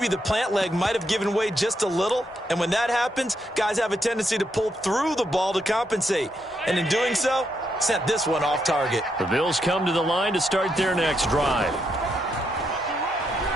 the plant leg might have given way just a little. And when that happens, guys have a tendency to pull through the ball to compensate. And in doing so, sent this one off target. The Bills come to the line to start their next drive.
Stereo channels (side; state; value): both; normal; correlation 0.79